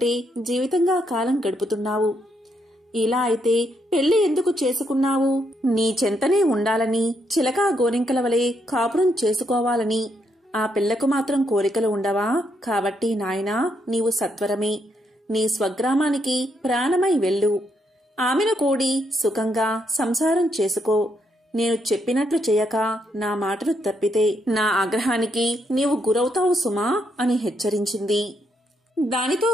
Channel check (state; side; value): normal; both; correlation 0.77